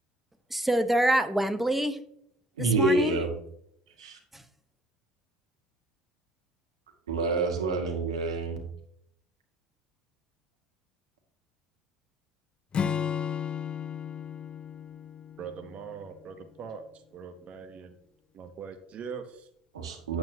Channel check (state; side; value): normal; both; correlation 0.54